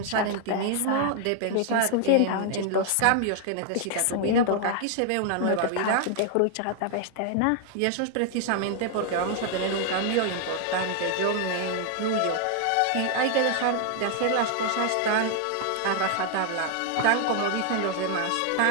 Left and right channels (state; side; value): different; both; correlation 0.00